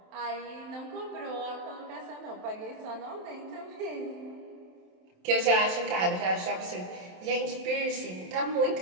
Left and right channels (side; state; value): left; late; 27 ms